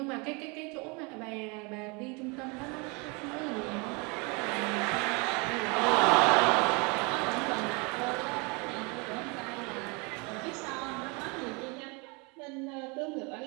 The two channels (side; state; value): left; quieter; 30.2 dB